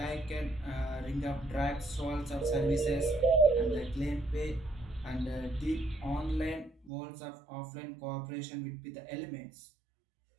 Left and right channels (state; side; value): drops out; left; at 6.9 s